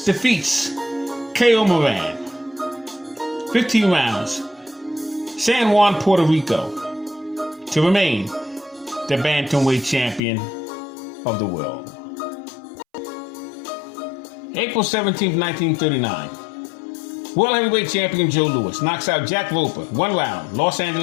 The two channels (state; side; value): drops out; right; at 10.2 s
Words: defeats K.O. Moran. 15 rounds. San Juan, Puerto Rico, to remain the bantamweight champion of the world. April 17, 1939. World heavyweight champion Joe Louis knocks out Jack Roper, 1 round, Los